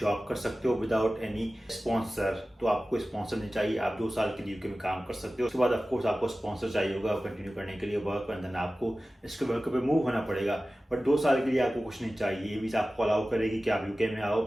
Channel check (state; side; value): normal; both; correlation 0.96